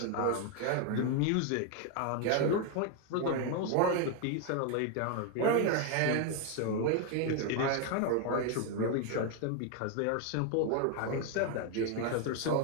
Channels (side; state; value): both; different; correlation 0.01